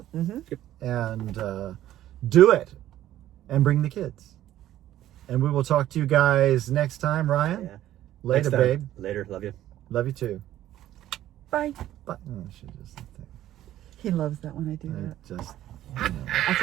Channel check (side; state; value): left; quieter; 13.1 dB